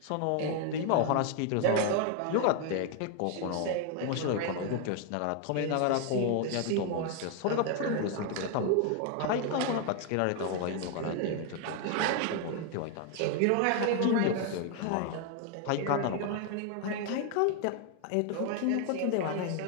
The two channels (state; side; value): different; both; correlation 0.00